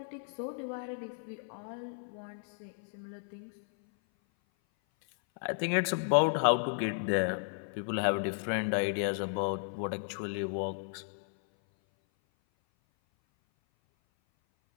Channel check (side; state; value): right; silent; 55 dB below the other